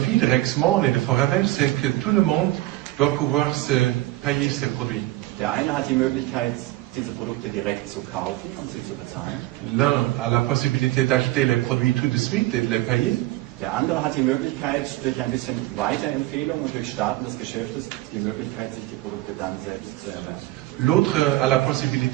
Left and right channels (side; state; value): left; quieter; 17.8 dB